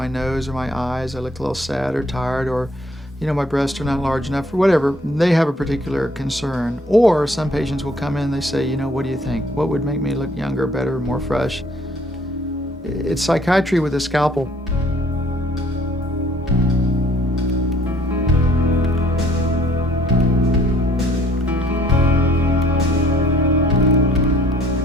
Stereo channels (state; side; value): normal; both; correlation 0.60